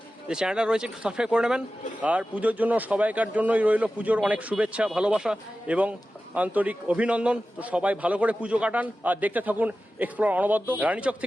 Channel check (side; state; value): both; normal; correlation 0.94